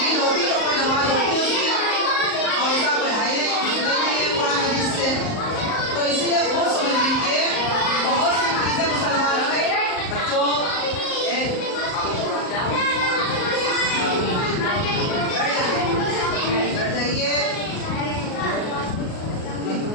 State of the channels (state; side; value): late; right; 38 ms